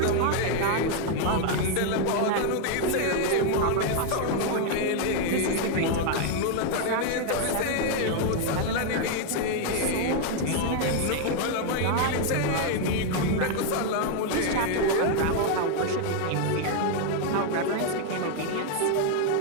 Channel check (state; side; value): different; both; correlation 0.01